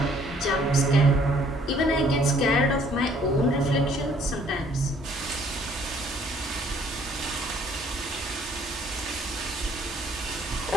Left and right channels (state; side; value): normal; both; correlation 0.61